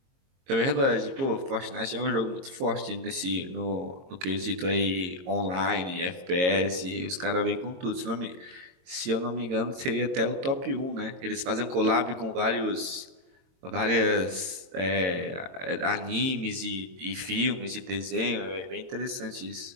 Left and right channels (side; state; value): left; late; 22 ms